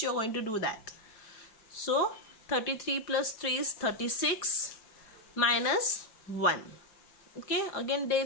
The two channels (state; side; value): late; right; 4.9 ms